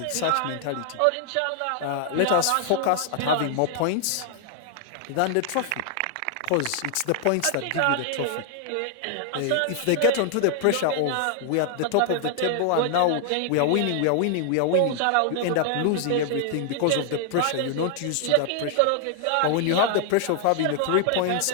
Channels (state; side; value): different; both; correlation 0.00